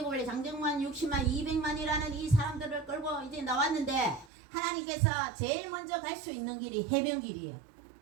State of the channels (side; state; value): left; drops out; at 4.2 s